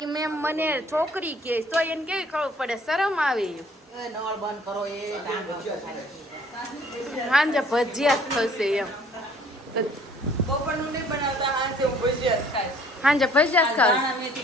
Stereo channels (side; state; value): both; normal; correlation 0.57